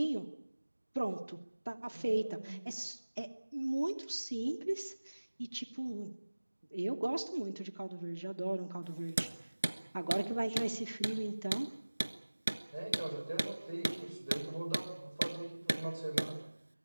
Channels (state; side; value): inverted; both; correlation -1.00